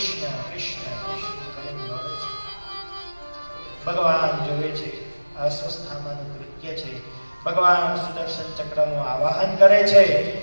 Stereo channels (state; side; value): inverted; both; correlation -1.00